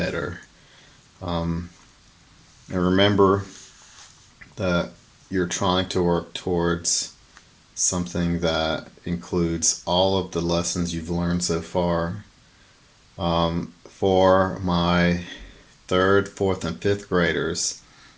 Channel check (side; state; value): both; identical; correlation 1.00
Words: And remember that you're trying to work towards something that includes all of the lessons you've learned so far. For my third, fourth, and fifth graders,